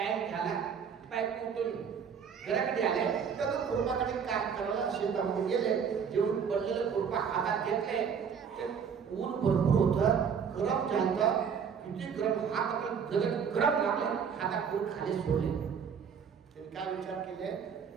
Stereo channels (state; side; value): quieter; left; 6.9 dB